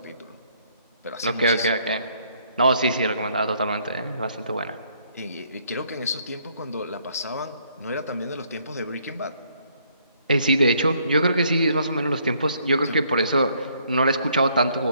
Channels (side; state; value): both; inverted; correlation -0.67